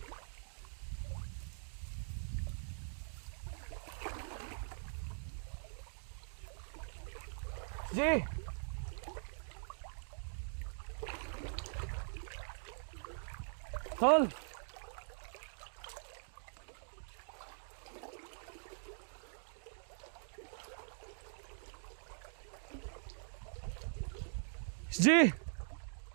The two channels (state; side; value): silent; left; digital silence